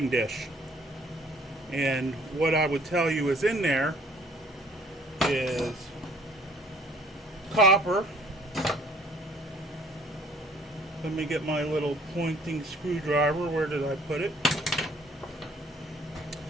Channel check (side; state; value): both; normal; correlation 0.57